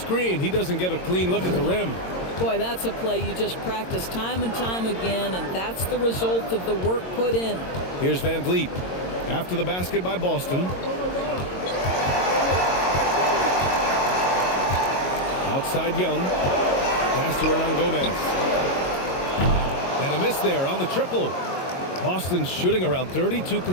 he doesn't get a clean look at the rim. Boy, that's a play you just practice time and time again, and that's the result of the work put in. Here's Van Vliet. After the basket by Boston. Outside Young. Pass to Hernan Gomez. And a miss there on the triple. Boston's shooting around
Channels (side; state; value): right; late; 22 ms